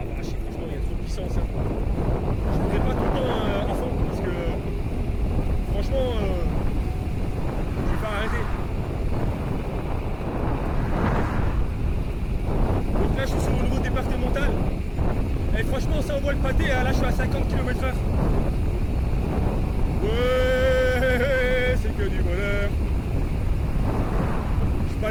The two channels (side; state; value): both; identical; correlation 1.00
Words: vache, franchement il y a trop de puissance. Hein. Je ne fais pas tout le temps à fond parce que franchement je vais pas arrêter. Donc là je suis sur le niveau départemental. Et franchement ça envoie le pâté, hein. Là je suis à 50 km/h. Ouais, c'est que du bonheur. Je peux